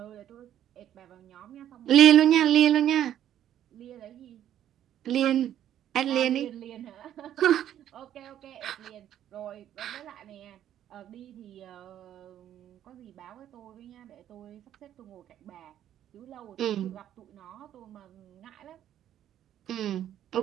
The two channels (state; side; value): quieter; left; 11.1 dB